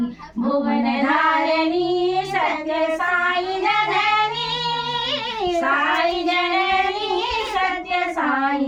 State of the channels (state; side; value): identical; both; correlation 1.00